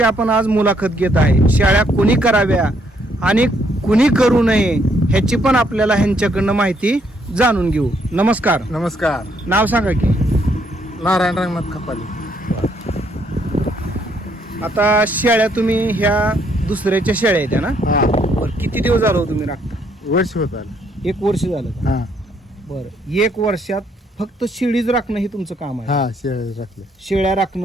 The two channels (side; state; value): both; normal; correlation 0.70